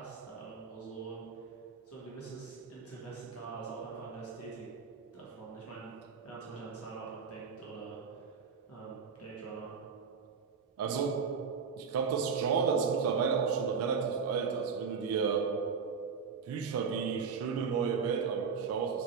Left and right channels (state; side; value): quieter; left; 5.8 dB